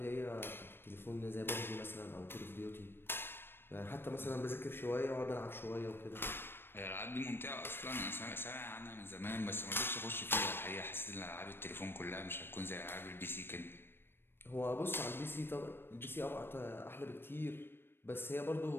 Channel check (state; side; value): late; right; 0.10 ms